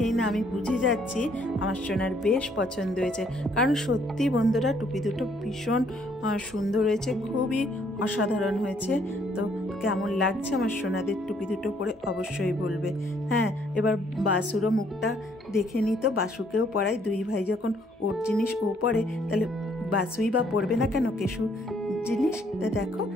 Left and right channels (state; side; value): normal; both; correlation 0.66